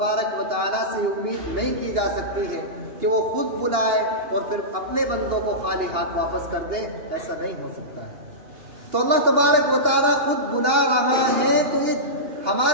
و تعالیٰ سے امید نہیں کی جا سکتی ہے کہ وہ خود بلائے اور پھر اپنے بندوں کو خالی ہاتھ واپس کر دے، ایسا نہیں ہو سکتا ہے۔ تو اللہ تبارک و تعالیٰ خود بلا رہا ہے تو یہ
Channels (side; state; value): left; late; 2.8 ms